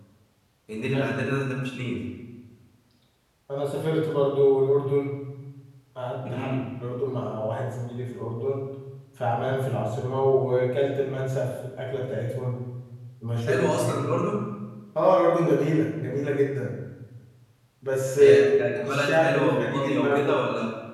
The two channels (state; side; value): identical; both; correlation 1.00